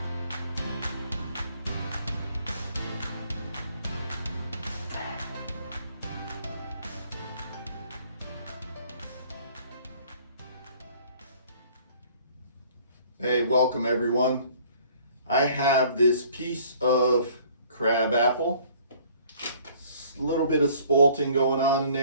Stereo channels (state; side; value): inverted; both; correlation -0.56